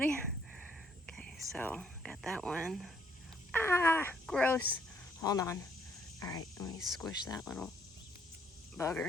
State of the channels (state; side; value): normal; both; correlation 0.68